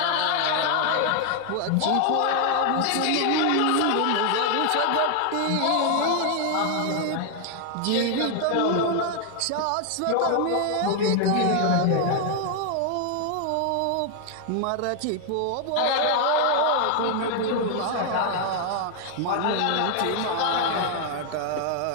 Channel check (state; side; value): different; both; correlation 0.00